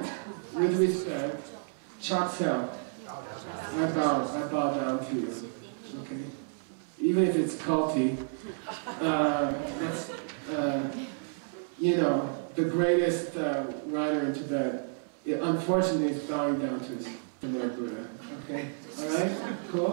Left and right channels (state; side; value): silent; left; 57 dB below the other